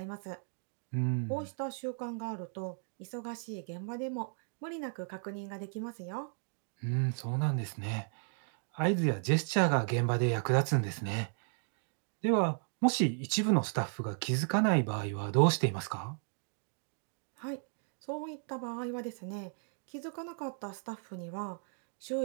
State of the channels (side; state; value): left; silent; 54 dB below the other